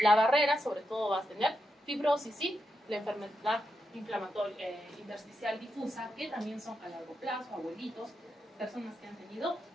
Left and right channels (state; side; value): normal; both; correlation 0.86